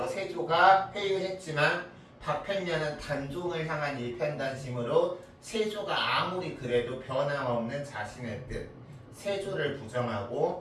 세조가 회유했지만 박팽년은 단종을 향한 일편단심으로 세조가 아무리 그래도 변함없는 자신의 뜻 세조를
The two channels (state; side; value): identical; both; correlation 1.00